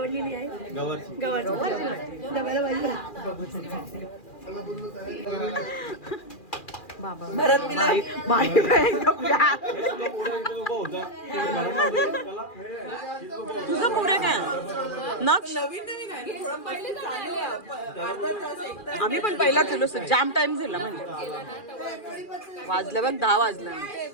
आहे. गवारची डब्याला भाजी. बाबा भरत तुझं पुढे काय आम्ही पण पहिला केलो. जाम टाइम झाला म्हणजे वाजलं बघ 10 वाजलं.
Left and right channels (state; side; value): late; right; 2.4 ms